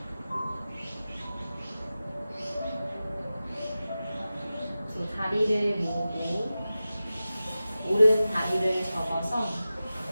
두 다리를 모으고 오른 다리를 접어서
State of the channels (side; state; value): both; inverted; correlation -0.95